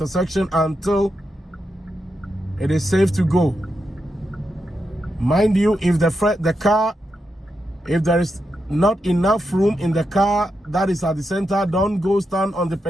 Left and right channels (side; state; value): both; normal; correlation 0.86